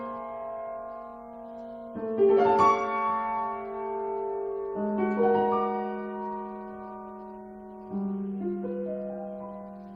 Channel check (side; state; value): both; identical; correlation 1.00